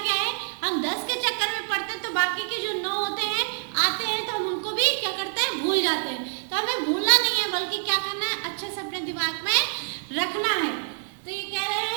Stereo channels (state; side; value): silent; left; 61 dB below the other